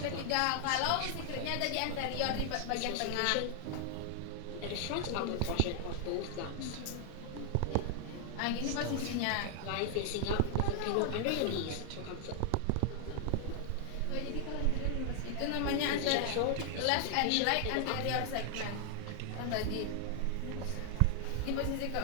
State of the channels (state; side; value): different; both; correlation 0.00